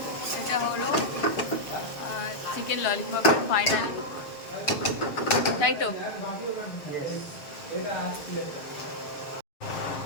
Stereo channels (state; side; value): late; right; 7.1 ms